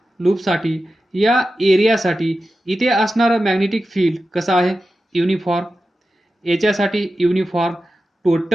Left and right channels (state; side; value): normal; both; correlation 0.92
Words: लूपसाठी या एरियासाठी इथे असणारं मॅग्नेटिक फील्ड कसं आहे, युनिफॉर्म. याच्यासाठी युनिफॉर्म.